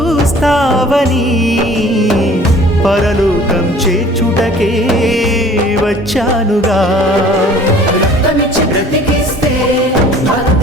పరలోకం చేర్చుటకే వచ్చానుగా.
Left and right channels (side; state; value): both; normal; correlation 0.50